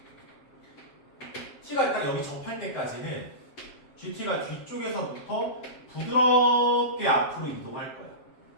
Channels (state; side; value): late; right; 7.6 ms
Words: t가 일단 여기 접할 때까지는 gt가 뒤쪽에서부터 부드럽게 앞으로 이동할 거야.